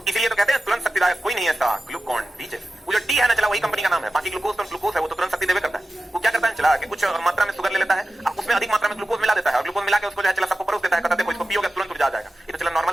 इसीलिए तो कहते हैं तुरंत शक्तिदायक कोई नहीं है ऐसा, ग्लूकॉन डी। वो जो डी है ना चला वही कंपनी का नाम है, बाकी ग्लूकोज तो ग्लूकोज है, वो तो तुरंत शक्ति देवे करता है। वो क्या करता है चला कि कुछ मात्रा में शुगर ले लेता है, उसमें अधिक मात्रा में ग्लूकोज मिला देता है और ग्लूकोज मिला के उसको जो है चला सबको परोस देता है, कहता है देखो इसको पियोगे तुरंत ऊर्जा आ जाएगा। ये तो चला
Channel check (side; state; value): both; normal; correlation 0.94